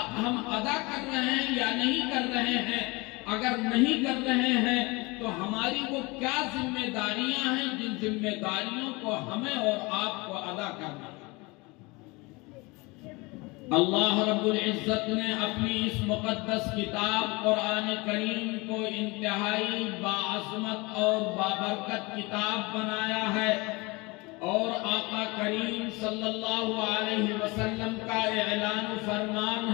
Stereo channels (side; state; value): right; quieter; 25.3 dB